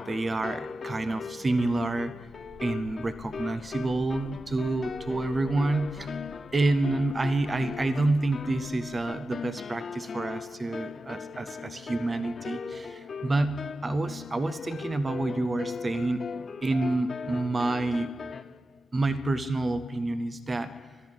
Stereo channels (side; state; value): both; normal; correlation 0.92